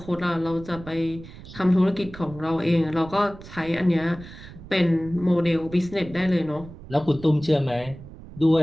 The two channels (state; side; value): noise; right; rumble, 16 dB below the sound